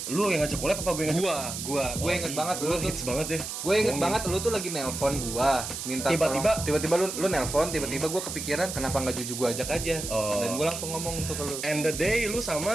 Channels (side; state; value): right; noise; hiss, 6 dB below the sound